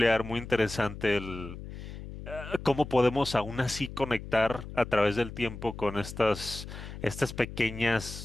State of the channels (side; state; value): left; noise; hum, 11 dB below the sound